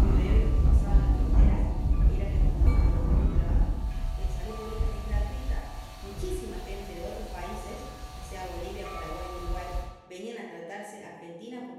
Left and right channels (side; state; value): both; identical; correlation 1.00